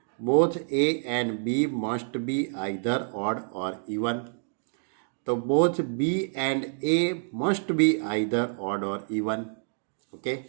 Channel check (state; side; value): silent; left; digital silence